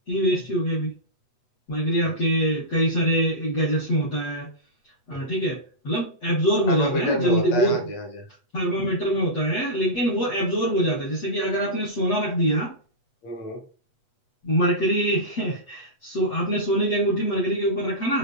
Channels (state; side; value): late; right; 8.2 ms